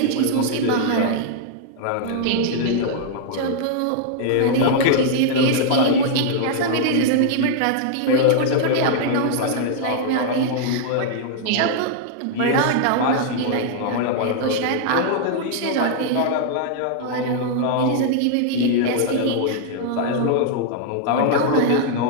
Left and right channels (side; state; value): both; different; correlation -0.01